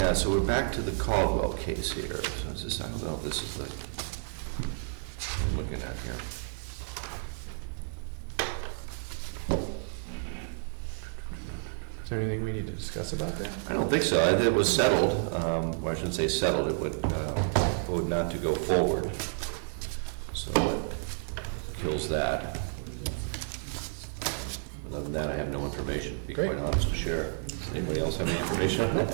so we're back to the Caldwell case here. So is this, I don't know if this is the, I'm looking at here. Is there anything we need to discuss about that? I don't think so. It was settled, or I shouldn't say settled, it would vote not to go forward. So it kills that. Other than that, I have no information, to be Great. quite honest, to share. Anybody else have any information on that?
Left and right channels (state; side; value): silent; left; digital silence